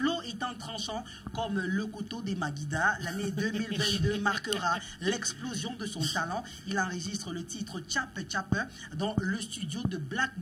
étant tranchant comme le couteau des Maguida, l'année 2022 marquera l'explosion de son talent. Il enregistre le titre Tchape Tchape dans le studio de Black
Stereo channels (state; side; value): identical; both; correlation 1.00